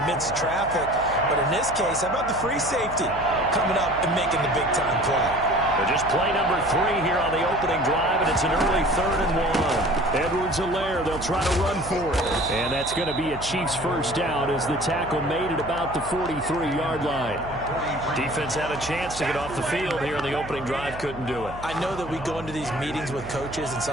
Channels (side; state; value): right; noise; hum, 14 dB below the sound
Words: traffic. But in this case, how about the free safety coming up and making the big-time play? They're just play number 3 here on the opening drive, and it's an early 3rd and 1. Edwards-Helaire, they'll try to run for it. And that's going to be a Chiefs first down as the tackle made it about the 43-yard line. Defense had a chance to get off the field here in the opening drive, couldn't do it. I know that we go into these meetings with coaches, and